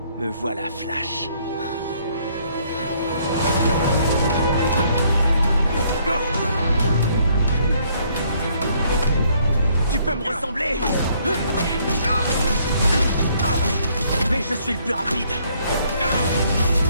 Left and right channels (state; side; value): inverted; both; correlation -0.66